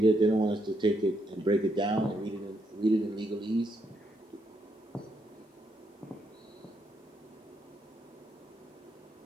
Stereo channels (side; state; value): both; normal; correlation 0.78